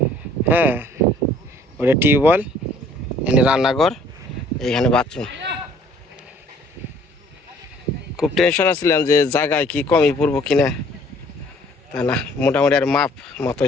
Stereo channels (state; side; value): normal; both; correlation 0.57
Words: হ্যাঁ ওটা টিউবওয়েল এনে রান্নাঘর এইখানে বাথরুম খুব টেনশন আসছিলাম যে জায়গায় কি কমই পড়বো কিনা তা না মোটামুটি আর মাপ মতো